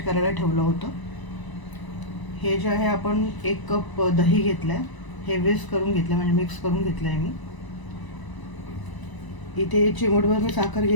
करायला ठेवलं होतं. हे जे आहे आपण 1 कप दही घेतलं आहे, हे विस्क करून घेतलं, म्हणजे मिक्स करून घेतलं आहे मी. इथे चिमूटभर मी साखर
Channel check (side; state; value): right; late; 1.0 ms